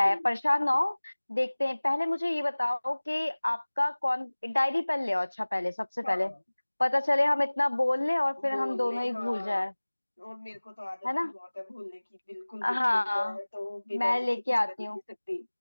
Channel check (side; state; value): both; inverted; correlation -1.00